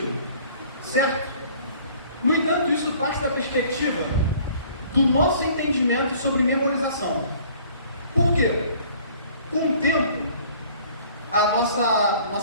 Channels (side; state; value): both; inverted; correlation -0.53